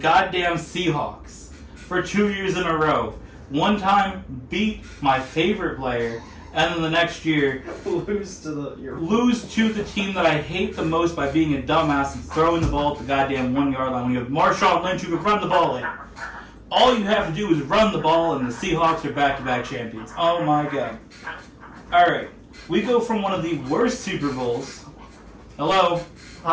Seahawks, for 2 years in a row, one time beat my favorite player, and then the next year Lose to the team that I hate the most by being a dumbass and throwing the ball at the goddamn 1 yard line when you have Marshawn Lynch who can run the ball in. All you have to do is run the ball, and the Seahawks are back-to-back champions. Oh my god. Alright, we go from one of the worst Super Bowls. Hello.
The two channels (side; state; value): both; identical; correlation 1.00